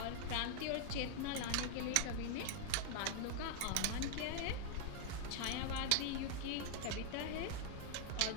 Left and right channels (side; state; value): both; different; correlation 0.00